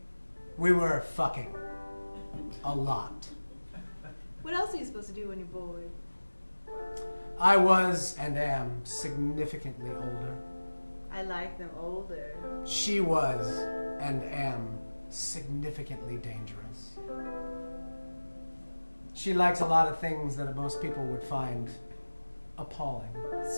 We were fucking. A lot. What else are you supposed to do when you're bored? I was and am significantly older. I like them older. She was and am significantly dangerous. She likes a lot of things that most people would find appalling.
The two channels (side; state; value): both; inverted; correlation -1.00